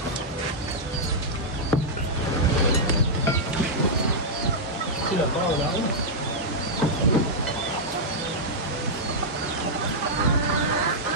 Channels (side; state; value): both; normal; correlation -0.08